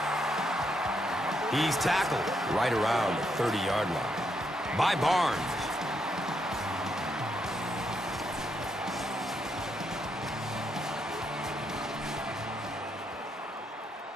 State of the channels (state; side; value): normal; both; correlation 0.78